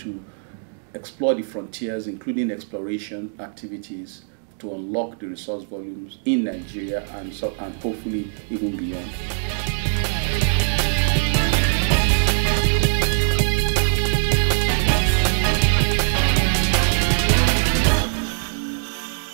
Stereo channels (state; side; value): silent; left; digital silence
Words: explore the frontiers, including exploration activities to unlock the resource volumes in Nigeria and hopefully even beyond.